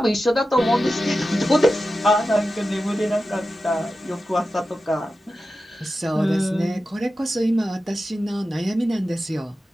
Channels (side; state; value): both; normal; correlation 0.92